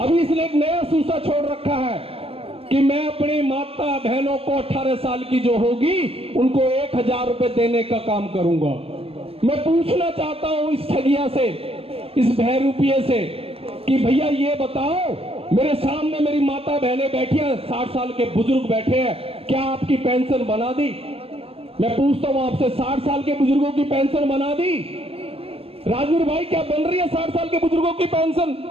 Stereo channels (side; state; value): left; late; 0.28 ms